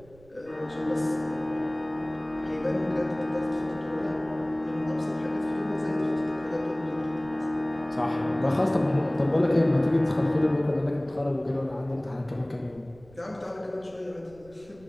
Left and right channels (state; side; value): noise; right; rumble, 25 dB below the sound